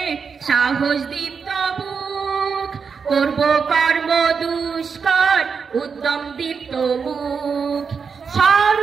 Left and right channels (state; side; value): quieter; left; 5.8 dB